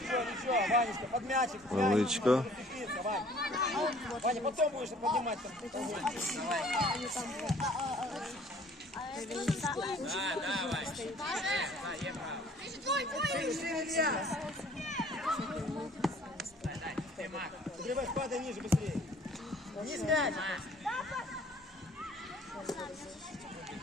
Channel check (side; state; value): both; normal; correlation 0.55